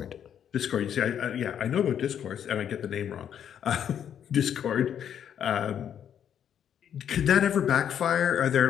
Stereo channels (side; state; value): right; quieter; 9.1 dB